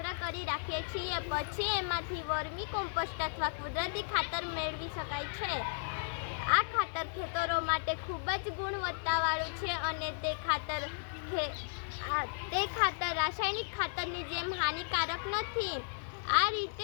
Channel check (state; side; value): silent; right; 55 dB below the other